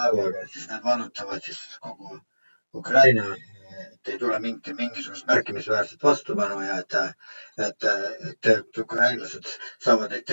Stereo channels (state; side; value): inverted; both; correlation -1.00